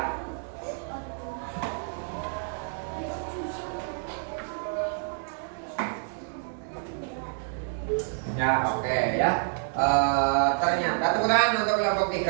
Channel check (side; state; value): left; silent; 59 dB below the other